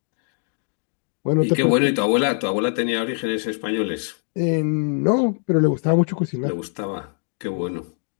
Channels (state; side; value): silent; right; 56 dB below the other